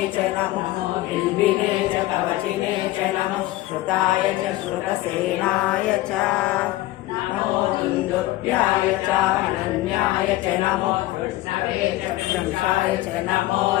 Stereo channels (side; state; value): right; quieter; 16.9 dB